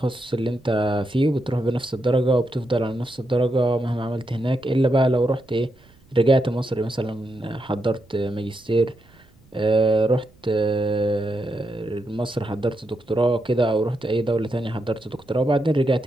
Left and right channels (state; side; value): noise; right; rumble, 30 dB below the sound